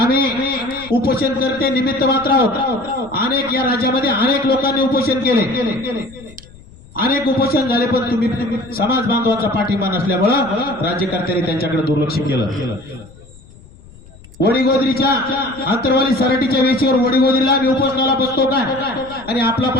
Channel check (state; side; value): noise; left; rumble, 22 dB below the sound